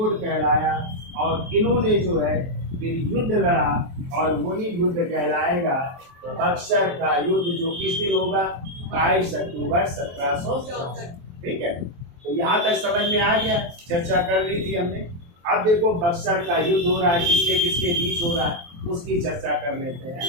कहलाया। और इन्होंने जो है फिर युद्ध लड़ा और वही युद्ध कहलाएगा बक्सर का युद्ध, जो किस दिन होगा? 22 अक्टूबर 1764। ठीक है। तो यहाँ तक समझ में आ गया, चर्चा कर ली थी हमने। अब देखो बक्सर का युद्ध हो रहा है, किसके किसके बीच हो रहा है उसकी चर्चा कर लेते हैं।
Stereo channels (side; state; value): left; late; 23 ms